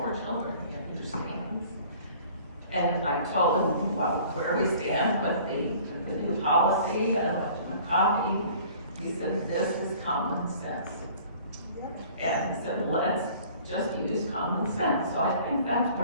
children, he understands. And I told him, well, where we stand with the new policy. I left him a copy. He said, this is common sense. And he said, let's just use common sense. So I think that's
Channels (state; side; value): inverted; both; correlation -0.50